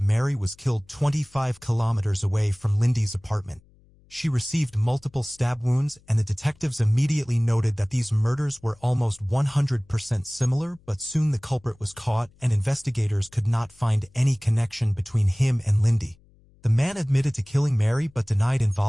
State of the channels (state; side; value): noise; left; hum, 30 dB below the sound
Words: Mary was killed 25 kilometers away from Lindy's apartment. She received multiple stab wounds, and the detectives immediately noted that these murders were almost 100% similar, but soon the culprit was caught, and investigators could not find any connection between him and Lindy. The man admitted to killing Mary but denied